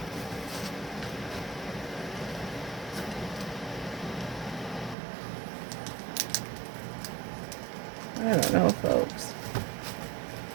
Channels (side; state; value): left; drops out; at 5.0 s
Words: I don't know, folks.